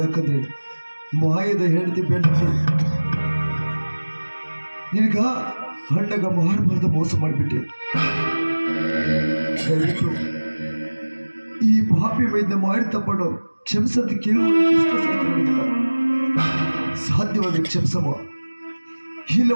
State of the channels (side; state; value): both; inverted; correlation -1.00